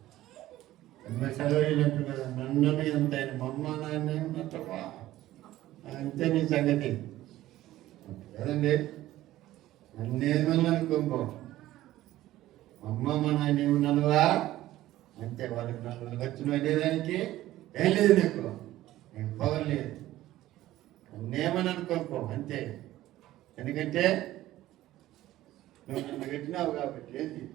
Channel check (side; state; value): left; quieter; 15.1 dB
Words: చదవలేనట్టు కదా. నన్ను ఎంత ఆయన మమ్మ నాన్న ఉన్నట్టవా అంతే నీ సంగతి కదండి. నన్నేమన్నా అనుకోంపో, అమ్మ మా నాయన ఏమన్నానువా అంతే. వాళ్ళకి నన్ను వచ్చిన వెళ్ళేదానికి ఏం లేదు, నీకు పవర్ లేదు. నన్నేమని అనుకోనుకో అంతే. ఎందుకంటే నువ్వు నన్ను పెట్టినావు కాబట్టి. ఏంటి